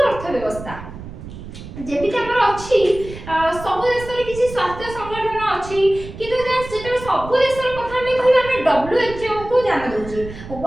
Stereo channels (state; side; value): noise; right; rumble, 13 dB below the sound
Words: ଅର୍ଥବ୍ୟବସ୍ଥା। ଯେମିତି ଆମର ଅଛି ସବୁ ଦେଶରେ କିଛି ସ୍ୱାସ୍ଥ୍ୟ ସଂଗଠନ ଅଛି କିନ୍ତୁ ଯେତେବେଳେ ସବୁ ଦେଶର କଥା ଆମେ କହିବା ଆମେ WHO କୁ ଧ୍ୟାନ ଦେଉଛେ,